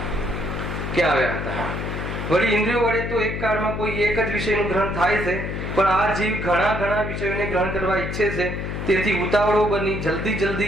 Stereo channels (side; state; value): left; noise; hum, 4 dB below the sound